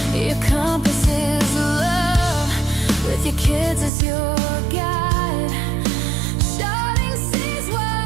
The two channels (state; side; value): drops out; left; at 3.9 s